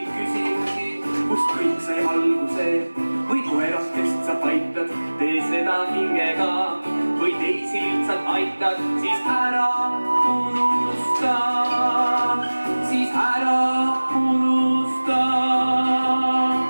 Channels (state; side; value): inverted; both; correlation -1.00